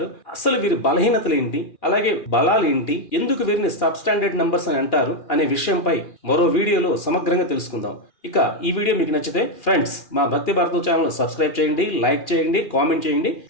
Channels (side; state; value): right; late; 2.4 ms